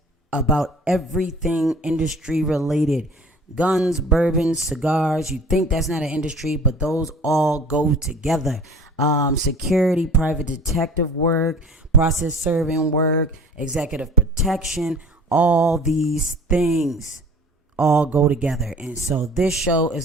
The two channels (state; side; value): normal; both; correlation 0.46